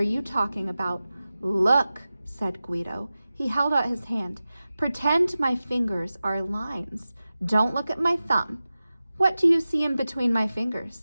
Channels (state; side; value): inverted; both; correlation -0.95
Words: you talking about?" "Look," said Guido. He held out his hand. "Pretend my fingers are lines. Don't look at my thumb. What do you see in between my